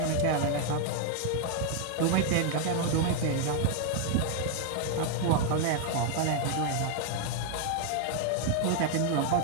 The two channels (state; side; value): different; both; correlation 0.00